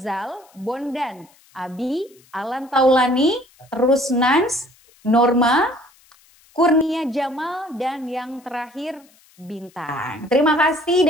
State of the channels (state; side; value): noise; left; hiss, 30 dB below the sound